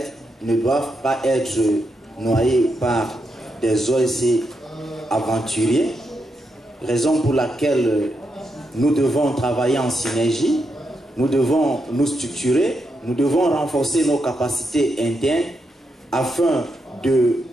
ne doivent pas être noyées par des OSC aventuriers, raison pour laquelle nous devons travailler en synergie, nous devons nous structurer, nous devons renforcer nos capacités internes afin de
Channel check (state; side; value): normal; both; correlation 0.83